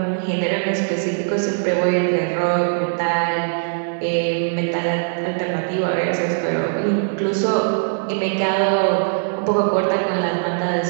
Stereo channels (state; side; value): silent; left; digital silence